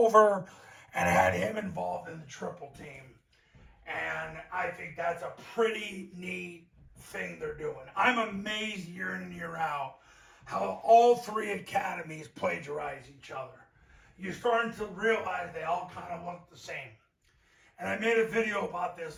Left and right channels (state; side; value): identical; both; correlation 1.00